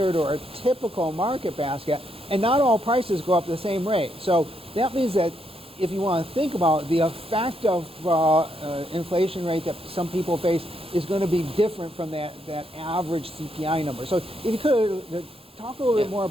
or a typical market basket, and not all prices go up the same rate. So that means that if you want to think about the effect of inflation rate that some people face is going to be different from that average CPI number. So if you could talk a little bit more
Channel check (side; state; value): both; normal; correlation 0.77